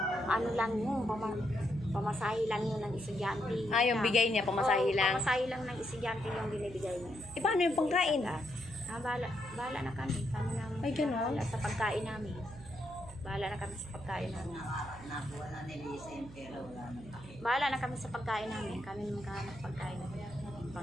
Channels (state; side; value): noise; right; hum, 16 dB below the sound